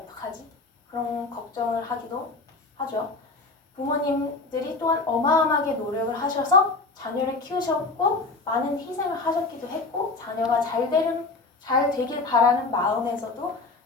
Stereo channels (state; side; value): quieter; right; 3.7 dB